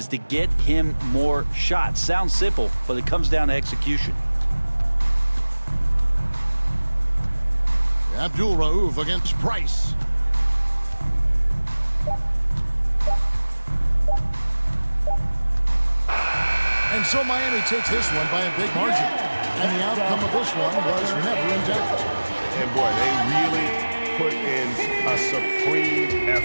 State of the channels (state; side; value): inverted; both; correlation -1.00